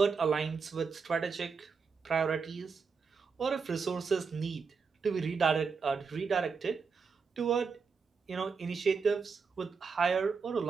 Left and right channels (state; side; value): quieter; left; 5.3 dB